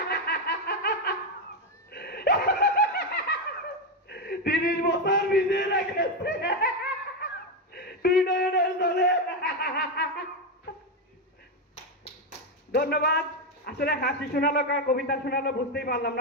30 বছর ভিজিয়ে রেখেছে দুই নয়নের জলে। ধন্যবাদ। আসলে হাসি শোনালো কার কবিতা শোনালো বুঝতেই পারলাম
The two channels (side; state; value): both; normal; correlation 0.08